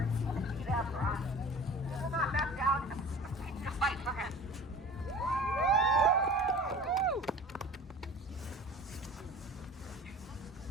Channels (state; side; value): normal; both; correlation 0.41